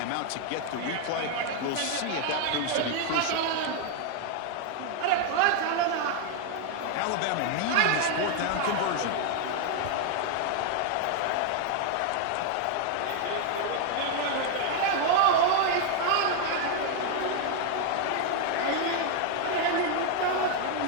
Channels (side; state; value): both; different; correlation 0.00